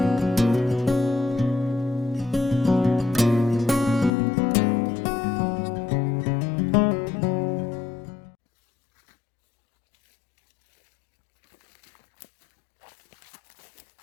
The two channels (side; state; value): right; drops out; at 4.1 s